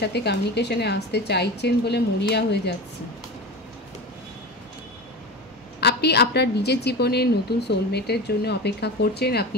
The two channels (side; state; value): both; normal; correlation 0.28